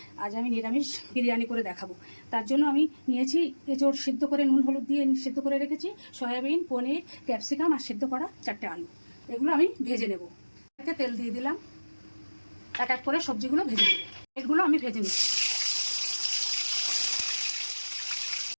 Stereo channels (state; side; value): inverted; both; correlation -1.00